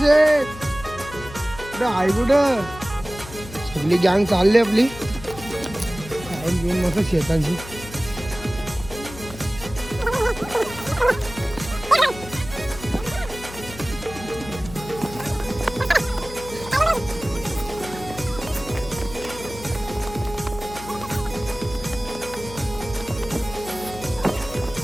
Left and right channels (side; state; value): left; noise; hum, 14 dB below the sound